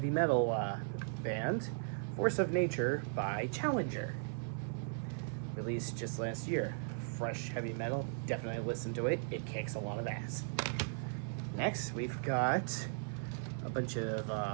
metal band, Force of Nature by Challenger. Released just last year. Fresh heavy metal, definitely listen to it, it kicks a lot of ass. Next, we've got a bunch of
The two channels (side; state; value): left; silent; 53 dB below the other